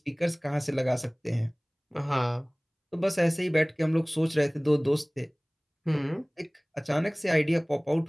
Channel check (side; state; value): both; identical; correlation 1.00